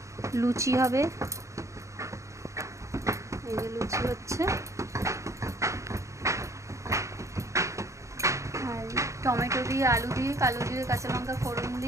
লুচি হবে, এই যে লুচি হচ্ছে, আর টমেটো দিয়ে, আলু দিয়ে, কালো দিয়ে, কাঁচা লঙ্কা ফোড়ন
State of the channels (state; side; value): late; left; 0.15 ms